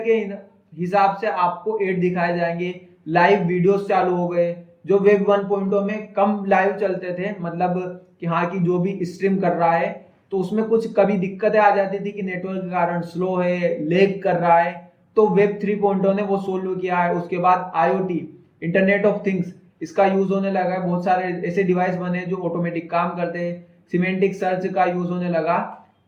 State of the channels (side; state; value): both; identical; correlation 1.00